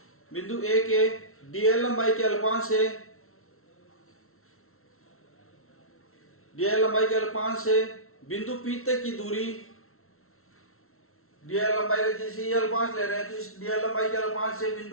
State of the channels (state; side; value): late; right; 0.62 ms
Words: के dl लंबाई के अल्पांश से बिंदु P तक की दूरी, dl लंबाई का जैसे ये अल्पांश ले रहे हैं तो इस dl लंबाई के अल्पांश से